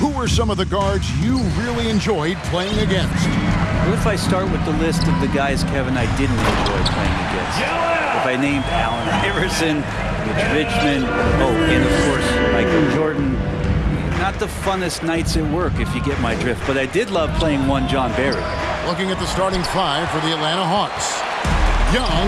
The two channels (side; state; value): both; identical; correlation 1.00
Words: were some of the guards you really enjoyed playing against? What if I start with the list of the guys, Kevin, I didn't enjoy playing against? If I named Allen Iverson, Mitch Richmond, and of course, Michael Jordan, not the funnest nights at work, if you get my drift, but I did love playing one John Barry. Looking at the starting five for the Atlanta Hawks.